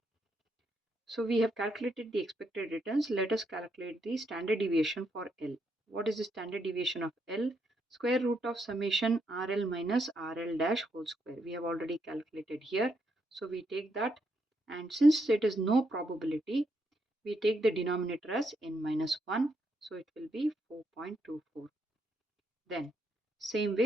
So we have calculated the expected returns. Let us calculate the standard deviation for L. What is the standard deviation of L? Square root of summation RL minus RL dash whole square. We have already calculated here. So we take that, and since it is no probability, we take the denominator as n minus 1. So it will be 4.24. Then same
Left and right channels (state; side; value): normal; both; correlation 0.78